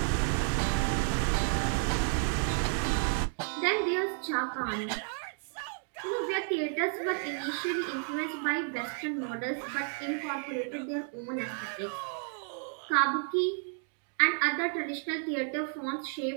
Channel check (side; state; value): left; silent; 57 dB below the other